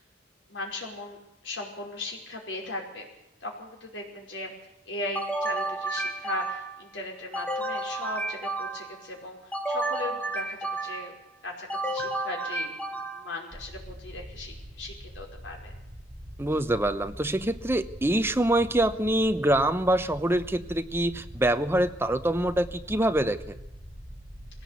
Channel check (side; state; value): both; normal; correlation 0.67